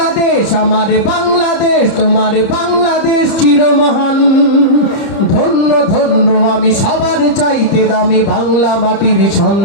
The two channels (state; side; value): late; right; 30 ms